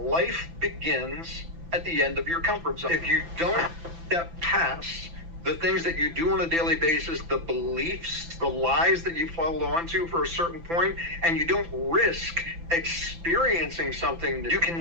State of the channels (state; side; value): late; left; 5.9 ms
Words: begins at the end of your comfort zone. If you don't step past the things that you do on a daily basis, the beliefs, the lies that you follow onto for a certain point, and you don't risk experiencing something, you